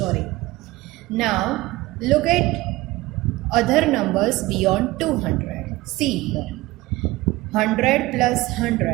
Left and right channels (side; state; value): left; quieter; 19.3 dB